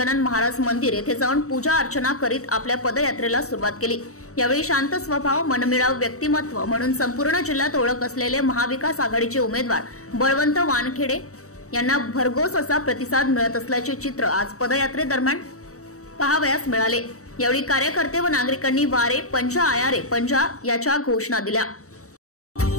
महाराज मंदिर येथे जाऊन पूजा अर्चना करीत आपल्या पदयात्रेला सुरुवात केली। यावेळी शांत स्वभाव, मनमिळाऊ व्यक्तिमत्व म्हणून संपूर्ण जिल्ह्यात ओळख असलेले महाविकास आघाडीचे उमेदवार बळवंत वानखडे यांना भरघोस असा प्रतिसाद मिळत असल्याचे चित्र आज पदयात्रेदरम्यान पाहावयास मिळाले। यावेळी कार्यकर्ते व नागरिकांनी वारे पंजा आया रे पंजा याच्या घोषणा दिल्या।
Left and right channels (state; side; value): late; right; 0.65 ms